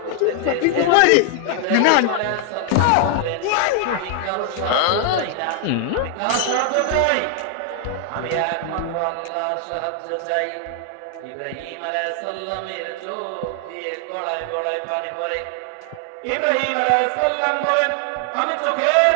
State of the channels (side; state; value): both; different; correlation 0.00